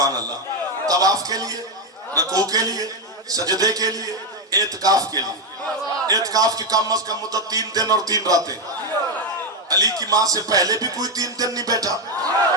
अल्लाह। तवाफ के लिए, रकू के लिए, सजदे के लिए, एतकाफ के लिए। एतकाफ की कम अज कम मुद्दत 3 दिन और 3 रातें। अली की मां से पहले भी कोई 3 दिन नहीं बैठा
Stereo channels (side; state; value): both; normal; correlation 0.07